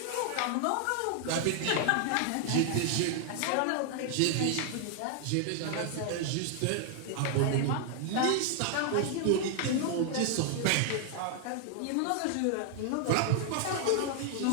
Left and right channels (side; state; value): both; different; correlation 0.00